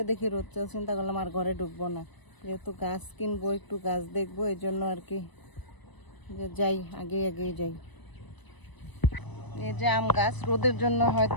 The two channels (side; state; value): right; late; 1.0 ms